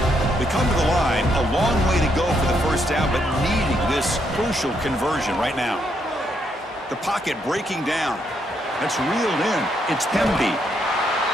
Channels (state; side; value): normal; both; correlation 0.76